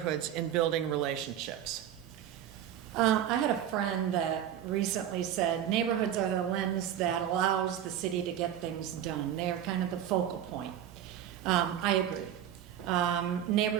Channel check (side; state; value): left; quieter; 10.4 dB